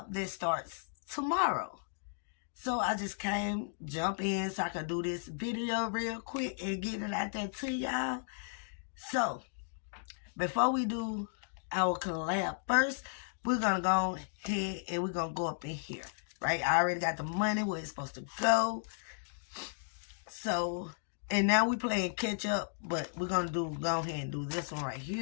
that starts tomorrow. So I just jump in so I can do this video real quick and get it out there to y'all. So before we do our collab, first we're gonna go ahead and we're gonna go up in here, right? I already got the money where it's supposed to go. So, and now we playing catch up, but we're gonna go ahead and do this one right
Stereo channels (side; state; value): right; silent; digital silence